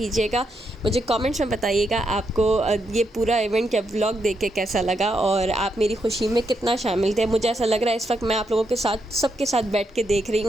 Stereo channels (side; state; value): both; normal; correlation 0.80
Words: मुझे कमेंट्स में बताइएगा आपको ये पूरा इवेंट या व्लॉग देख के कैसा लगा और आप मेरी खुशी में कितना शामिल थे। मुझे ऐसा लग रहा है इस वक्त मैं आप लोगों के साथ सबके साथ बैठ के देख रही